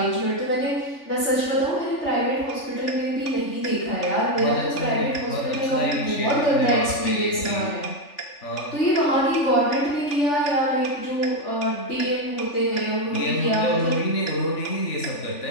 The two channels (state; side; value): late; right; 3.4 ms